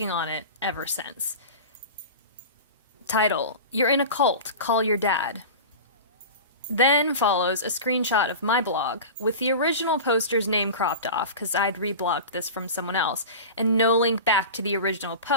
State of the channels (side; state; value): both; inverted; correlation -0.31